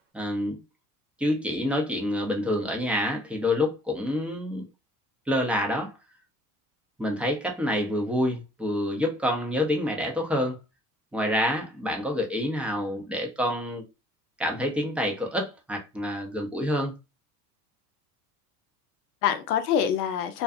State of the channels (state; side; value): normal; both; correlation 0.55